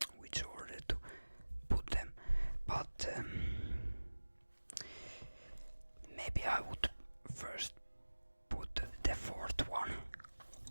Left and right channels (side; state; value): both; inverted; correlation -1.00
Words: which order to put them, but maybe I would first put the fourth one.